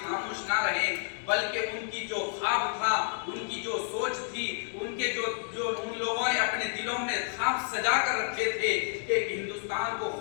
خاموش نہ رہیں، بلکہ ان کی جو خواب تھا، ان کی جو سوچ تھی، ان کے جو ان لوگوں نے اپنے دلوں میں خواب سجا کر رکھے تھے کہ ہندوستان کو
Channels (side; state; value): right; silent; digital silence